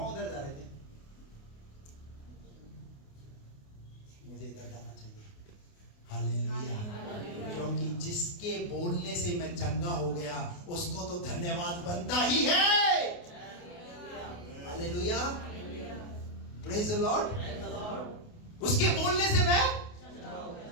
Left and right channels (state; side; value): late; right; 28 ms